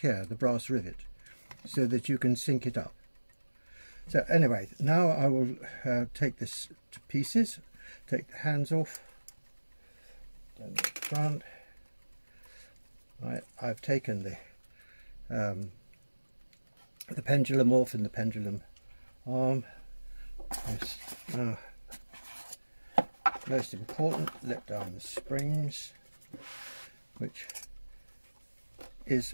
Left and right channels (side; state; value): both; inverted; correlation -1.00